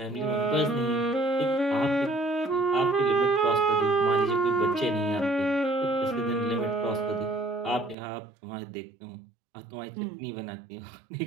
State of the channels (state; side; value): drops out; left; at 8.0 s